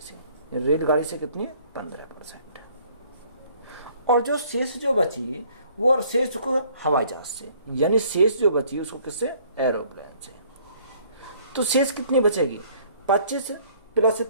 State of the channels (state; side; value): inverted; both; correlation -0.59